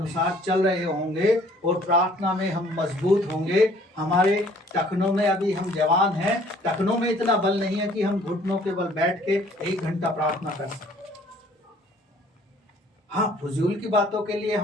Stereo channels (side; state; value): both; normal; correlation 0.57